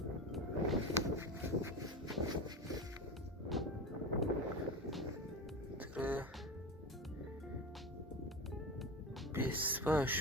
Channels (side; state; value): both; normal; correlation 0.25